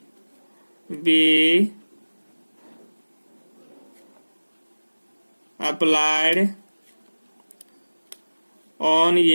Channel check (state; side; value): inverted; both; correlation -1.00